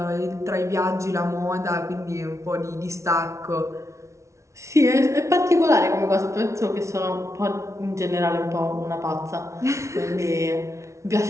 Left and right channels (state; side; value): late; left; 0.14 ms